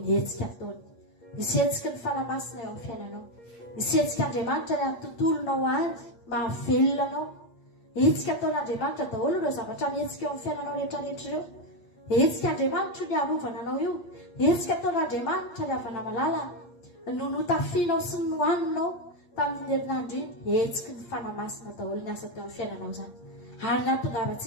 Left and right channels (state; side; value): late; right; 8.5 ms